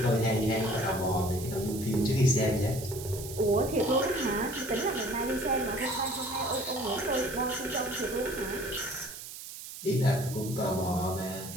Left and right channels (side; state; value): right; noise; hiss, 11 dB below the sound